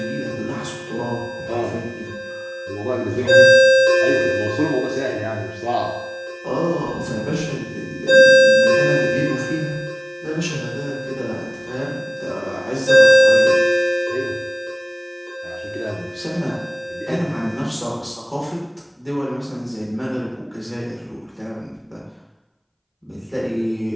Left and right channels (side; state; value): both; identical; correlation 1.00